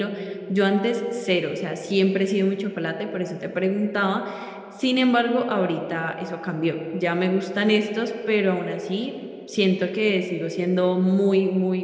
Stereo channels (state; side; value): identical; both; correlation 1.00